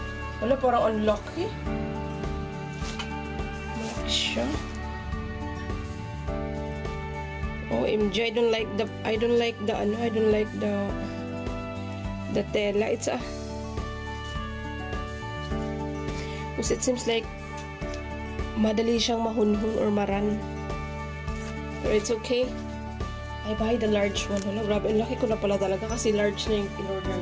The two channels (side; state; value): both; identical; correlation 1.00